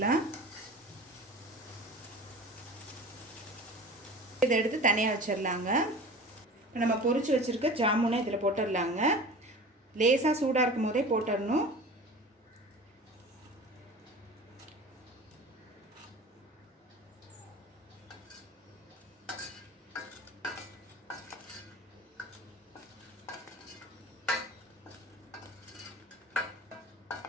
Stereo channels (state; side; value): normal; both; correlation 0.38